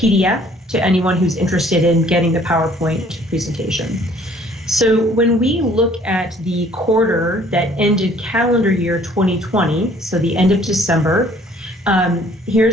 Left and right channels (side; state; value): both; normal; correlation 0.58